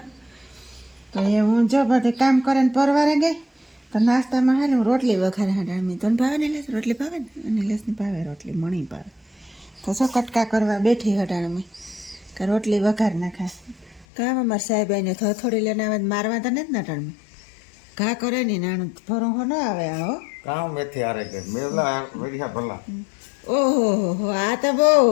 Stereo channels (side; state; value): right; drops out; at 14.1 s